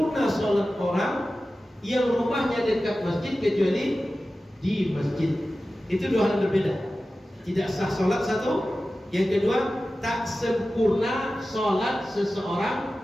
sholat orang yang rumahnya dekat masjid kecuali di masjid. Itu dua hal berbeda. Tidak sah sholat satu, yang kedua tak sempurna sholat seseorang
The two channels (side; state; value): both; normal; correlation 0.95